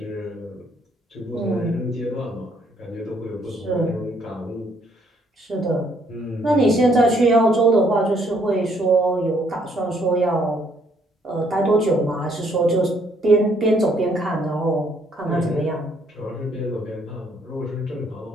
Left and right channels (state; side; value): normal; both; correlation 0.67